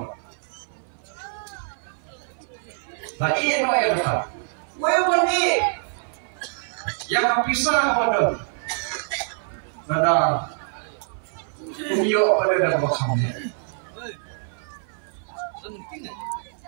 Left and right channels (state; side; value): silent; left; 56 dB below the other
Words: Nah iya no ya kata. Wewan ni yang pisah kepada pada iyo pada dalam kami.